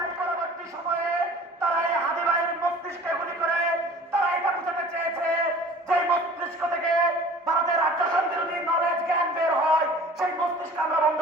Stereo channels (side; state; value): both; normal; correlation 0.46